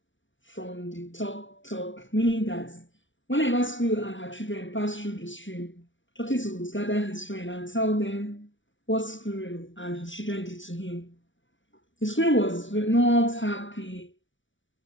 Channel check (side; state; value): right; late; 0.56 ms